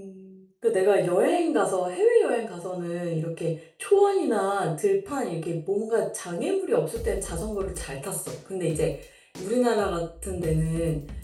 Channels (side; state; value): both; identical; correlation 1.00